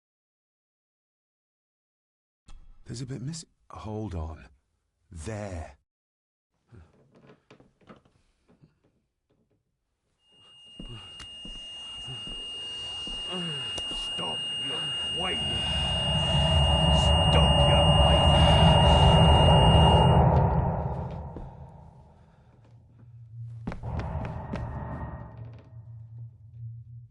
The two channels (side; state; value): both; identical; correlation 1.00